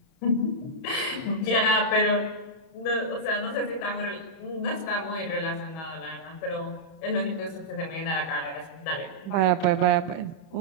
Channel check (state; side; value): late; right; 31 ms